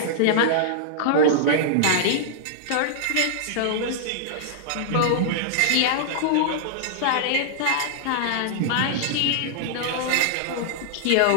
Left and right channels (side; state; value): both; different; correlation -0.01